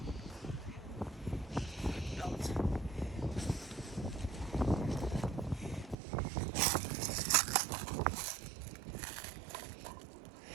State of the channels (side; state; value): left; drops out; at 6.0 s